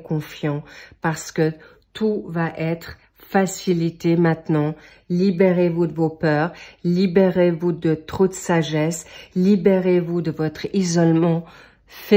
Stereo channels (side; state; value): both; identical; correlation 1.00